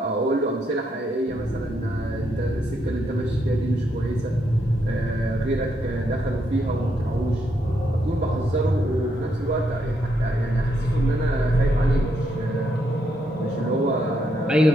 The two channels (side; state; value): both; normal; correlation 0.77